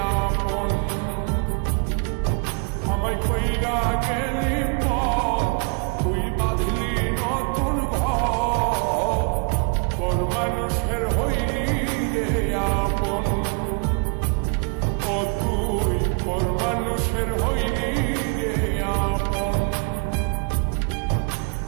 আপন। আমায় কইরা গেলি তুই বাঁধলি নতুন ঘর, পর মানুষের হইলি রে আপন। ও তুই পর মানুষের হইলি রে আপন।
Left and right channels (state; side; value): quieter; left; 35.4 dB